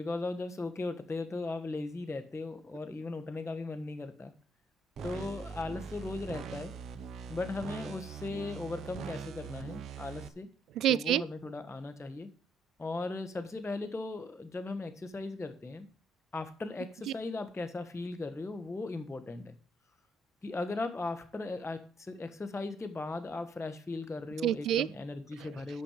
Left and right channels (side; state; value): both; normal; correlation 0.72